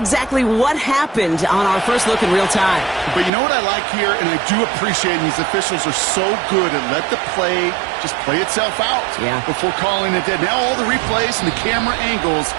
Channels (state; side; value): drops out; left; at 3.3 s